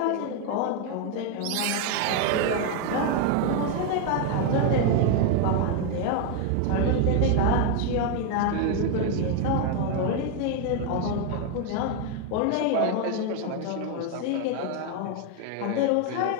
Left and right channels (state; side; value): different; both; correlation 0.01